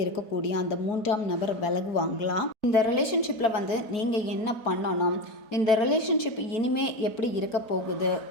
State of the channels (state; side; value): late; right; 4.6 ms